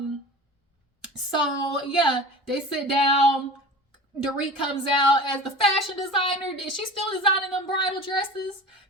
So yeah, they sit down. Dorit comes out as the fashion designer. Is she still designing them bridal dresses?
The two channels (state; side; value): normal; both; correlation 0.37